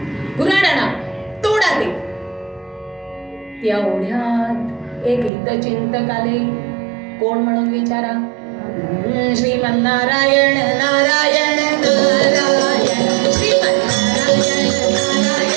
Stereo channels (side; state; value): left; drops out; at 5.3 s